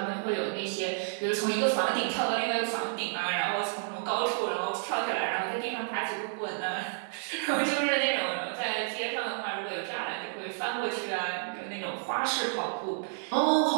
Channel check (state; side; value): silent; left; digital silence